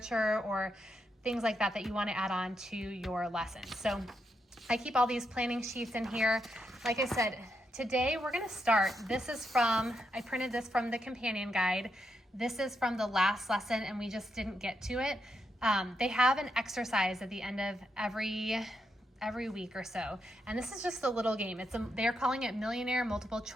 or things like that that you want to add on to your lesson. So I keep all these planning sheets in here. Like I said, today we're going to start. I printed this from the companion guide. This is from the last lesson and we just didn't get to it. They have an exercise at the end of every week or so. And this is just a little game. They're calling it Millionaire Multiple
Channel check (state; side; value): normal; both; correlation 0.82